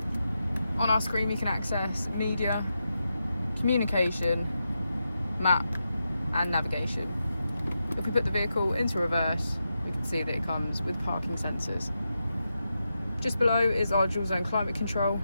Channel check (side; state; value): both; inverted; correlation -0.87